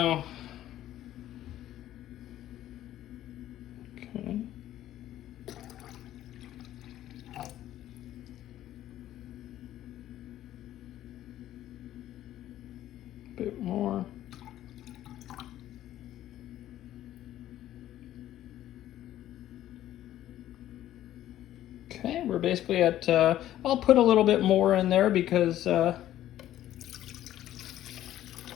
Okay. Bit more. Okay, we're basically at, I'll put a little bit more in there because,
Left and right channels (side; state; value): right; quieter; 13.0 dB